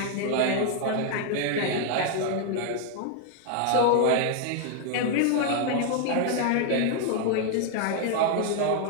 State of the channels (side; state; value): both; different; correlation 0.00